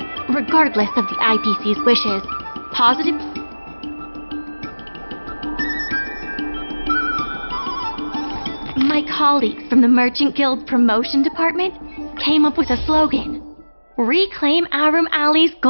Regardless of the IPC's wishes, positive... My colleagues from the Merchant Guild's promotion department came up with a slogan: Reclaim Aurum Alley's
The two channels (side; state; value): both; inverted; correlation -1.00